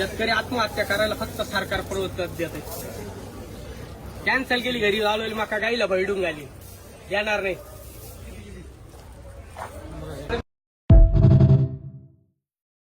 आत्महत्या करायला फक्त सरकार प्रवृत्त देते. कॅन्सल केली, घरी लावलेली मका गाईला भरडून घाली. येणार नाही.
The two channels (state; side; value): identical; both; correlation 1.00